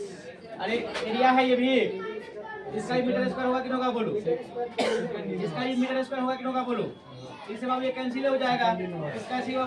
अरे एरिया है ये भी, इसका ही मीटर स्क्वायर होगा कि होगा बोलो, इसका ही मीटर स्क्वायर होगा कि होगा बोलो। इससे बाबू ये कैंसिल हो जाएगा, इसका सी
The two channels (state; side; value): identical; both; correlation 1.00